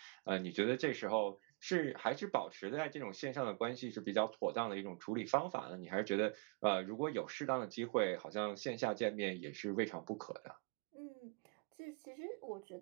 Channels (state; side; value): quieter; left; 32.5 dB